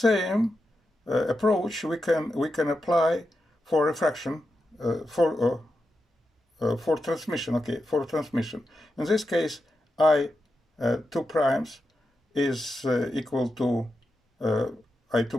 approach we can apply for refraction for transmission. Okay, for transmission. In this case, I2 primes is equal to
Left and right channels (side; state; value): both; normal; correlation 0.88